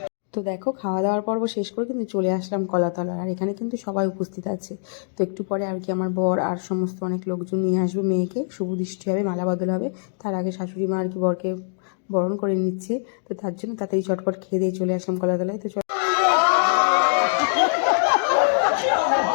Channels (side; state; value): right; silent; digital silence